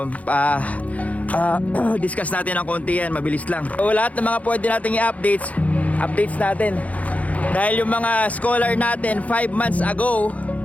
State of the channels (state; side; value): late; right; 0.069 ms